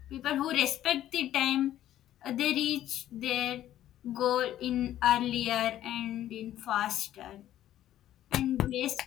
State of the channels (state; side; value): quieter; right; 12.5 dB